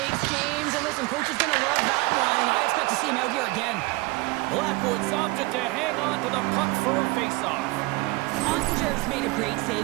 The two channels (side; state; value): left; quieter; 23.4 dB